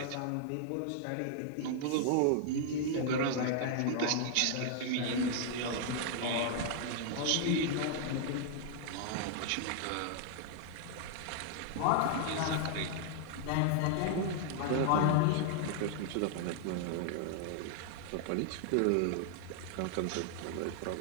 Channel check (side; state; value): both; different; correlation 0.00